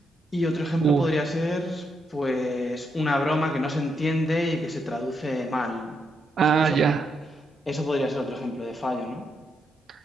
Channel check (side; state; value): both; normal; correlation 0.80